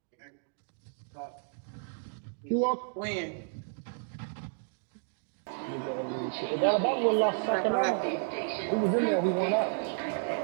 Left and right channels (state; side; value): silent; left; digital silence